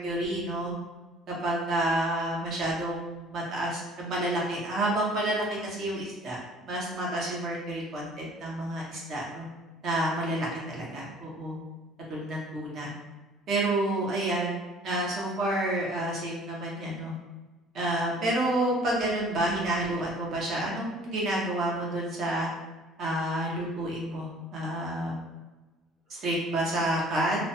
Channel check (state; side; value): normal; both; correlation 0.52